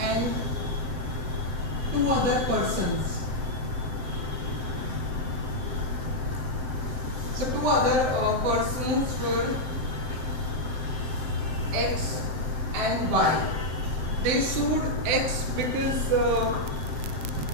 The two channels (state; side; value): late; left; 7.8 ms